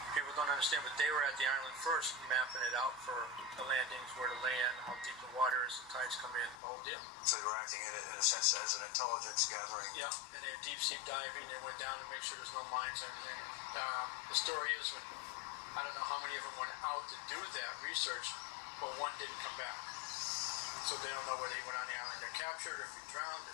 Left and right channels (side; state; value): right; drops out; at 6.6 s